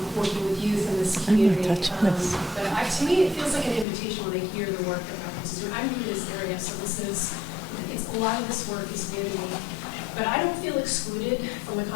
working with youth in this community. But to me, it feels like an invitation when I hear the work that Marcus is doing. I'm new to this area, so a lot of this work is new to me. But I don't feel excluded from the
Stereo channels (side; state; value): right; drops out; at 3.9 s